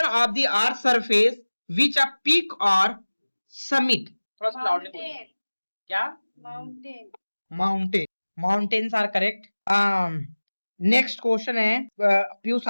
of the earth surface which a peak और समिट। थोड़ा सा लाउडली बोलिए। क्या? Mountain. Mountain. Mountains are correct. Next question है पीयूष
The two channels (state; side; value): inverted; both; correlation -1.00